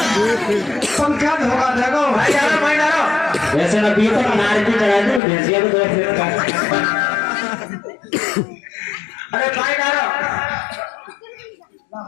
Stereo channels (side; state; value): right; drops out; at 5.2 s